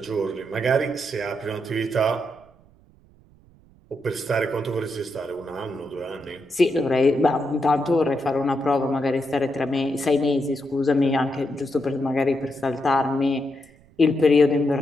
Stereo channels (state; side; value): noise; right; rumble, 29 dB below the sound